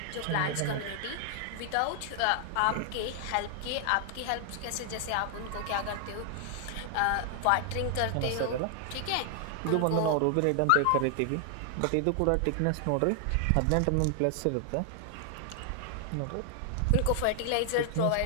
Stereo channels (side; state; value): both; different; correlation 0.00